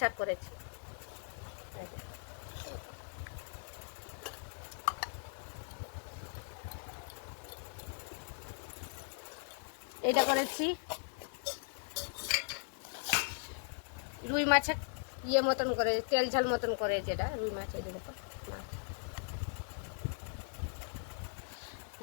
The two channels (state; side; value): silent; right; 52 dB below the other